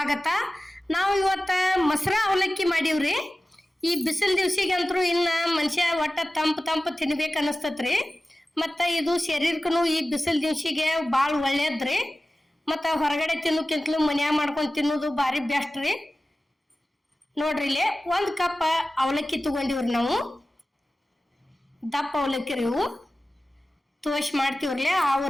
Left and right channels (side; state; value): both; normal; correlation 0.95